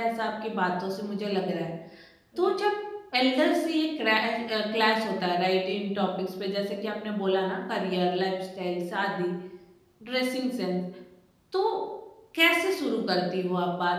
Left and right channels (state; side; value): identical; both; correlation 1.00